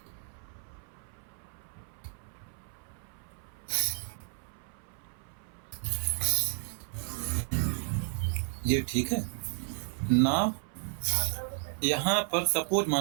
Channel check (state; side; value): silent; left; 56 dB below the other